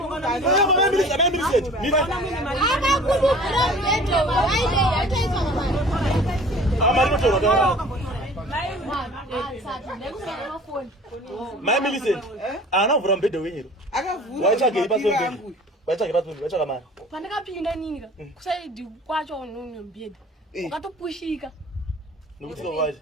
Mama mimi set. Mimi. Akakubukira mbeto waide yataiswa ngamani. Amari kutora. Mafoni. Mama listen. Ana uvura mbedhe wenyero. Akavhura. Waichage ipasombe. Waichage pasombe, waichage mari. Pandakapinda nini ka kusaidi kwacho unombeda wakatopushika Nokuti waje.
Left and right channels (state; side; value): normal; both; correlation 0.46